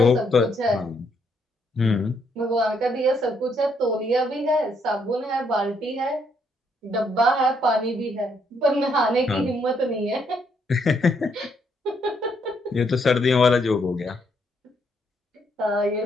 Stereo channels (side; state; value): both; normal; correlation 0.73